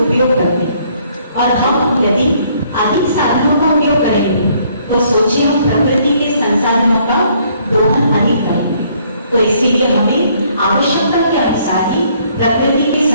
करते हैं। और हम यदि अधिक साधनों का उपयोग करेंगे तो सोचिए हम प्रकृति के संसाधनों का दोहन अधिक करेंगे। तो इसीलिए हमें आवश्यकता के अनुसार ही प्रकृति के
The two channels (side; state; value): both; inverted; correlation -0.65